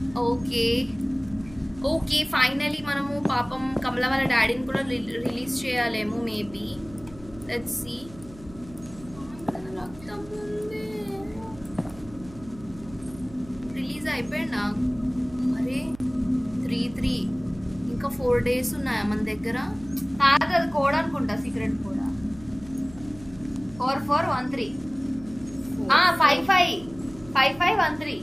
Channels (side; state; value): right; noise; hum, 19 dB below the sound